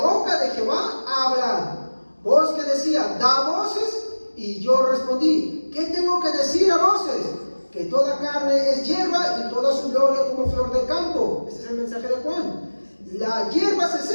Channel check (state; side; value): inverted; both; correlation -1.00